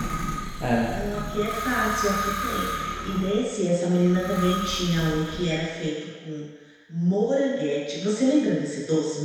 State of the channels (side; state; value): both; identical; correlation 1.00